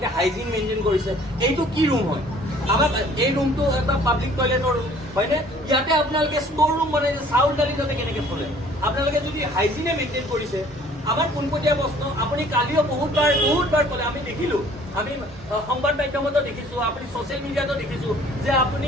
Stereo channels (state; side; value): normal; both; correlation 0.54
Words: হাইজিন মেইনটেইন কৰিছে। এইটো কি ৰুম হয়? আমাক এই ৰুমটো এটা পাব্লিক টয়লেটৰ ৰুম হয়নে? ইয়াতে আপোনালোকে ষ্ট'ৰ ৰুম বনাইছে, চাউল দালি যাতে কেনেকৈ চলে? আপোনালোকে যদি হাইজিনে মেইনটেইন কৰিছে, আমাৰ পোনপটীয়া প্ৰশ্ন, আপুনি কালিও বহুতবাৰ ক'লে, আমি দেখিলোঁ, আমি সংবাদ মাধ্যমতো দেখিছোঁ, আপুনি ছ'চিয়েল মিডিয়াতো দেখিছোঁ যে আপুনি